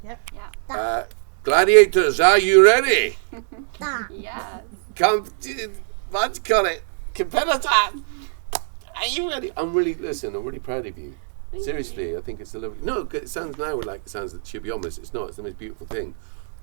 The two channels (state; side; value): silent; left; digital silence